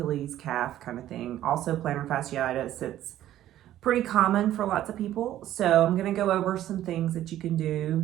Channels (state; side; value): quieter; left; 12.8 dB